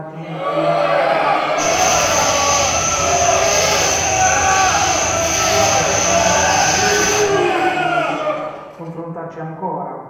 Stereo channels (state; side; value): identical; both; correlation 1.00